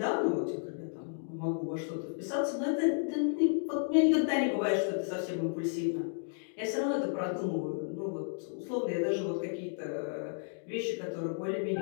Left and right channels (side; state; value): right; silent; digital silence